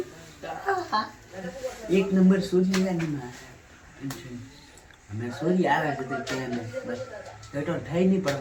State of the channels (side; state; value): both; identical; correlation 1.00